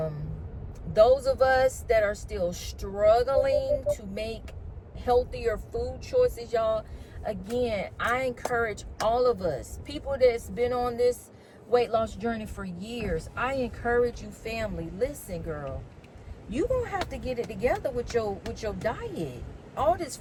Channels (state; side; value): identical; both; correlation 1.00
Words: of us that are still struggling to make healthier food choices, y'all, again, I encourage all of us, people that's been on this weight loss journey for years, I encourage you, family, listen, girl, you gonna have to get it together with your diet. All this